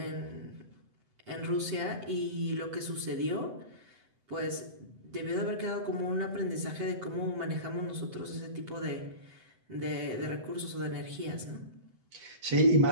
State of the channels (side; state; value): left; late; 7.9 ms